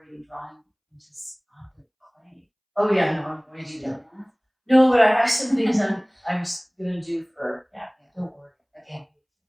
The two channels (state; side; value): identical; both; correlation 1.00